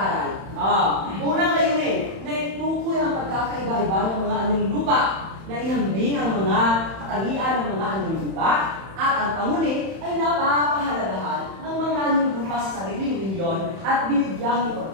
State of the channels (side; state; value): left; late; 31 ms